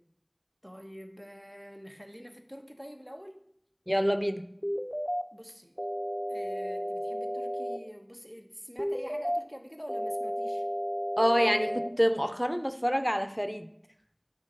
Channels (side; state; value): both; identical; correlation 1.00